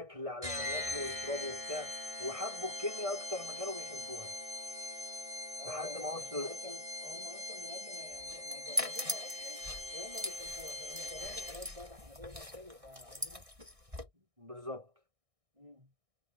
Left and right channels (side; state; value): left; late; 1.6 ms